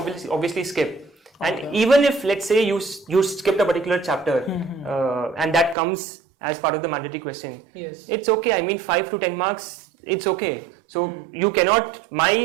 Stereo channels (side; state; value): left; drops out; at 5.8 s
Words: skip. And even if, let's say, you skipped a particular chapter and that comes as part of the mandatory question, it's okay. I mean, 5 to 10 marks, it's okay. So you cannot,